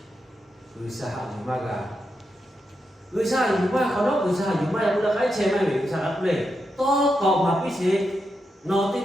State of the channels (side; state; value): both; normal; correlation 0.86